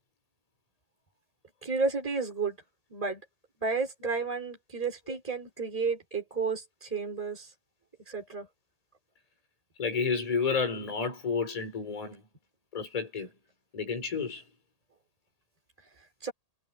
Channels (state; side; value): late; right; 1.8 ms